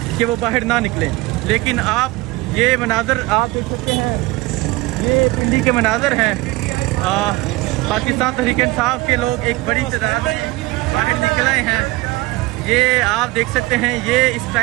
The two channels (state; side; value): quieter; left; 20.9 dB